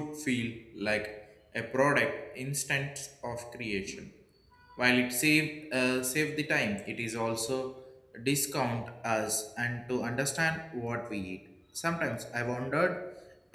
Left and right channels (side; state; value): both; identical; correlation 1.00